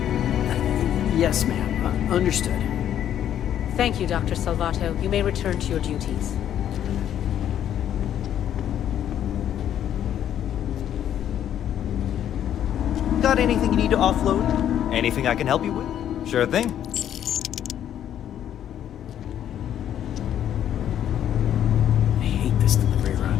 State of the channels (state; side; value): quieter; right; 10.4 dB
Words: Yes, ma'am. Understood. Thank you, Dr. Salvato. You may return to your duties. Got anything you need to offload? Anything I can help you with? Sure thing. I hate this delivery